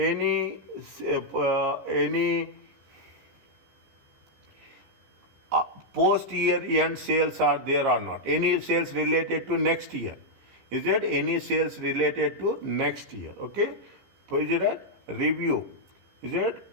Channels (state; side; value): late; left; 15 ms